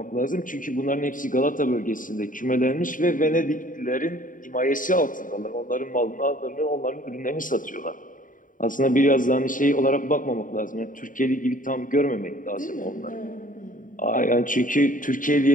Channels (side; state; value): right; late; 0.39 ms